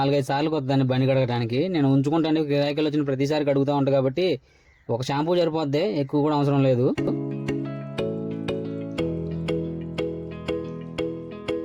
సార్లు కొద్దాన్ని బండి కడగడానికి. నేను ఉంచుకుంటాను, గిరాకీలు వచ్చిన ప్రతిసారి కడుగుతూ ఉంటాను కాబట్టి ఒక షాంపూ సరిపోద్ది, ఎక్కువ కూడా అవసరం లేదు.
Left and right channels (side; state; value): both; identical; correlation 1.00